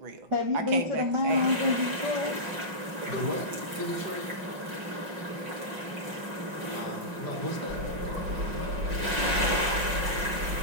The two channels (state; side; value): late; left; 5.5 ms